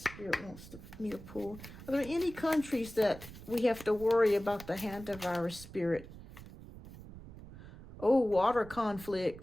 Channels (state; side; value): noise; right; rumble, 16 dB below the sound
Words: wants me to pull. Are there any countries that we have to worry about the hantavirus, Spirit? Oh, water